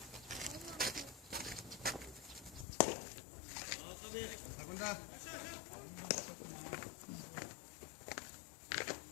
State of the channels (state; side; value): drops out; right; at 2.7 s